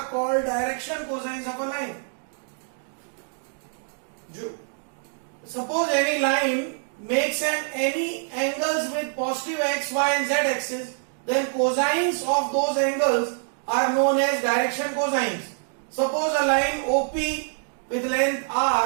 called direction cosines of a line. Suppose any line makes any angles with positive x, y and z axis, then cosines of those angles are known as direction cosines. Suppose a line OP with length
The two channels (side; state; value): left; silent; digital silence